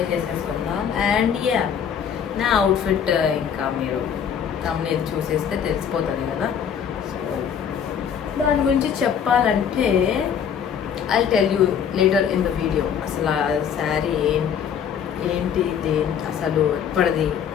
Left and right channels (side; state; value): right; quieter; 7.9 dB